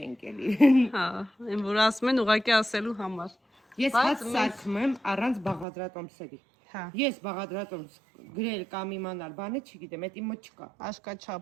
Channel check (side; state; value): left; drops out; at 5.7 s